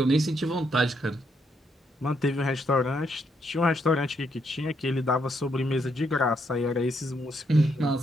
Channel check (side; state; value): both; normal; correlation 0.76